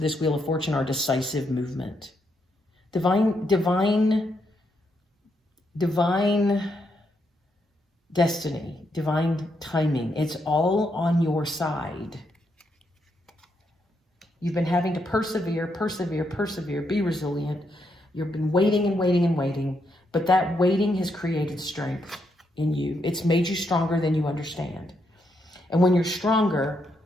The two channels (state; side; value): normal; both; correlation 0.79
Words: Wheel of Fortune are decisive movement, divine destiny, divine timing. It's all on your side. You've been having to persevere, be resilient. You've been waiting and waiting and waiting, but that waiting has created strength in you. It's made you stronger than you understand. And when you're stronger,